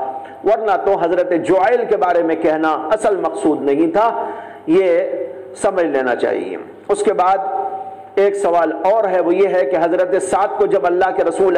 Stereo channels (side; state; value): both; identical; correlation 1.00